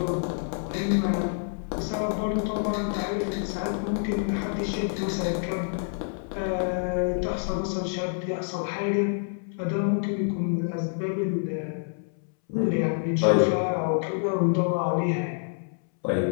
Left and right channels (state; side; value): silent; right; 60 dB below the other